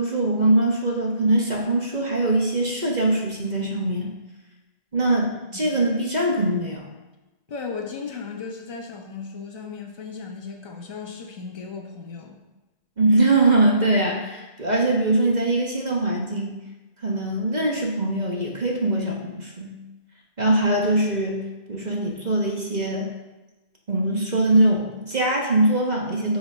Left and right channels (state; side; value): late; left; 2.0 ms